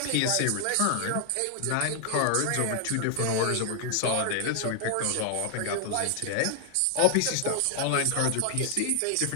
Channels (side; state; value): both; different; correlation 0.00